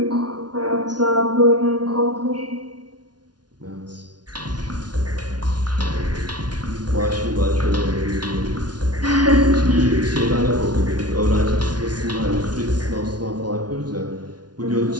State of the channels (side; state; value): left; late; 0.69 ms